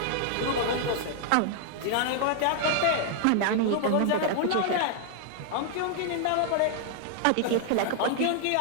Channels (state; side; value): different; both; correlation 0.00